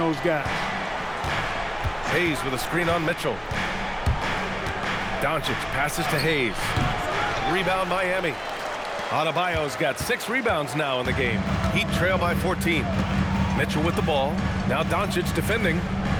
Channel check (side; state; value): both; identical; correlation 1.00